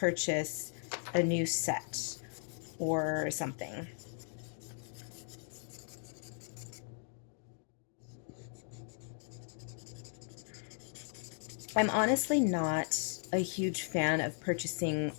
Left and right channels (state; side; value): silent; right; 53 dB below the other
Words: a new set or something. I'm honestly not a huge fan of purchasing